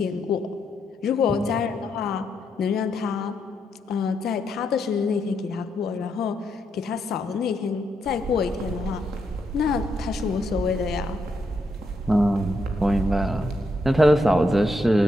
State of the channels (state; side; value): normal; both; correlation 0.79